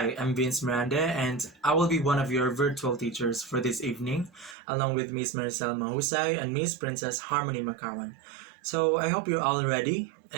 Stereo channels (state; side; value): drops out; left; at 4.5 s